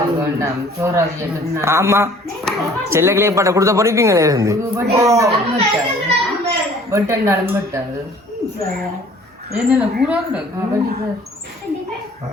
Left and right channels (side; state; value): both; normal; correlation 0.53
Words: ஆமா செல்ல கிளியப்பாட்ட கொடுத்த பொறிப்பீங்களே இருந்து